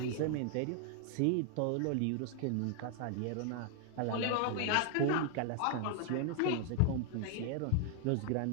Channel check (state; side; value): different; both; correlation 0.00